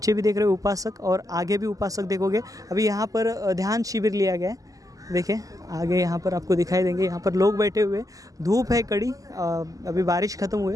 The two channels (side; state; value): left; late; 0.17 ms